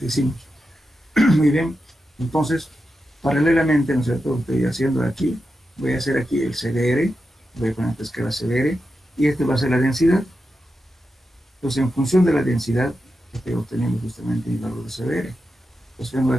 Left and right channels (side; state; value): both; normal; correlation 0.89